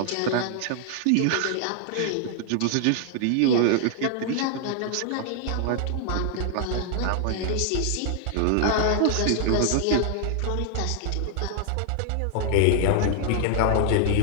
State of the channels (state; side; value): different; both; correlation 0.00